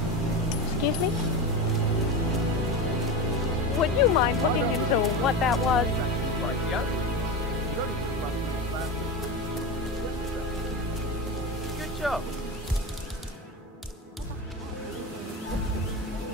Excuse me? Would you mind looking into what that was? Good job.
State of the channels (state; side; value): normal; both; correlation 0.22